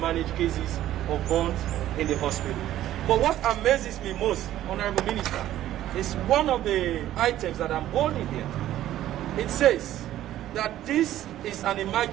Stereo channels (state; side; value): quieter; left; 13.1 dB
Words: manage cases of burns in the hospital. But what amazes me most, Honorable Minister, is one of the items that I'm holding here. It says that this is an